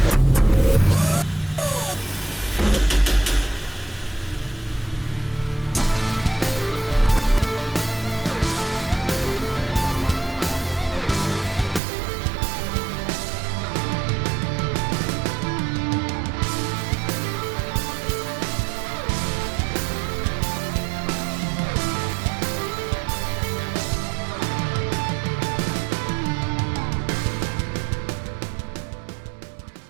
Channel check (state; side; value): drops out; left; at 11.8 s